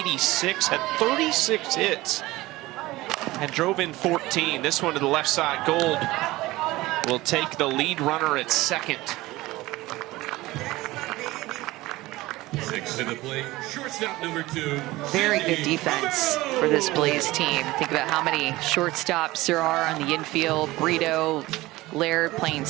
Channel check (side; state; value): left; quieter; 18.9 dB